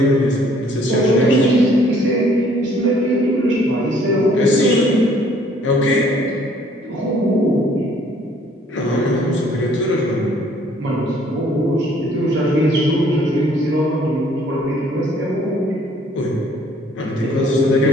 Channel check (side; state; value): both; normal; correlation 0.60